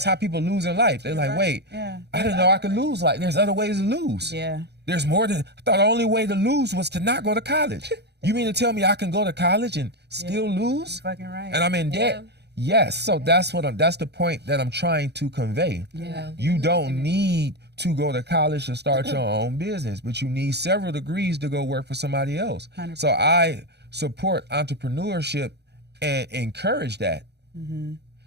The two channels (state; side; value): late; left; 0.48 ms